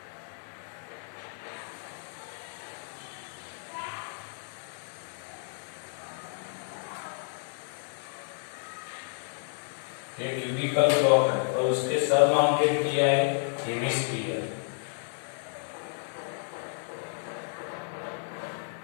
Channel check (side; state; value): right; silent; digital silence